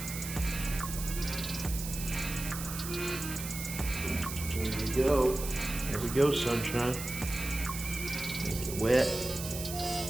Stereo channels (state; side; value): noise; right; hiss, 7 dB below the sound